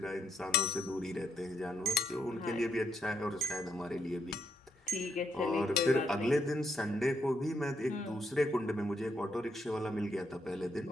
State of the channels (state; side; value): normal; both; correlation 0.76